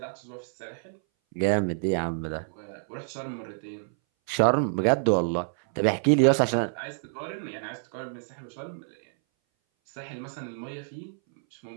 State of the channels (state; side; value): silent; left; 59 dB below the other